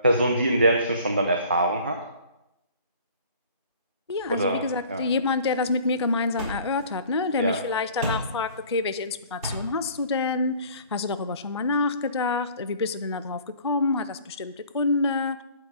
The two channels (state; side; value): inverted; both; correlation -0.51